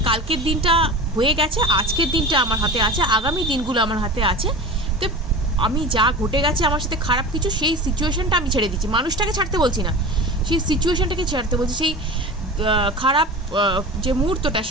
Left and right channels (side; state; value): both; normal; correlation 0.32